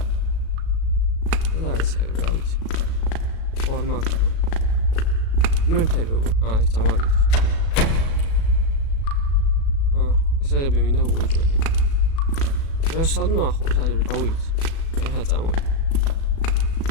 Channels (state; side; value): late; right; 36 ms